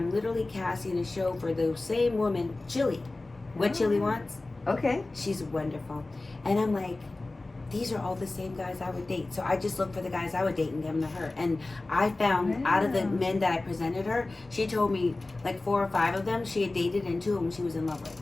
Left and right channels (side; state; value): right; quieter; 3.1 dB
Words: literally casting a show for the same woman, Chili. What Chili wants? Okay. She's wonderful. And I'm like, these are all the same guys I would date. So I just looked for the guys I would date and give them to her. And I found out of the Wow. men that I presented her, she told me like 4 or 5 of them she had dated, and 2 of them she was in love with.